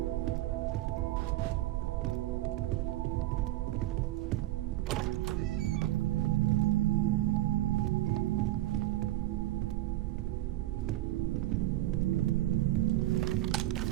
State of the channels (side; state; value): left; quieter; 15.8 dB